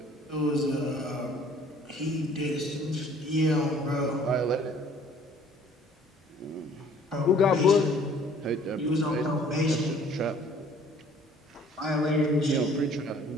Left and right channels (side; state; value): both; normal; correlation 0.55